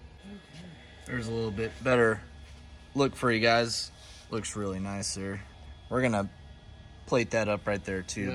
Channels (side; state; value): both; identical; correlation 1.00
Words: There's a little bit better look for you guys. Looks really nice there. We're gonna plate that up right there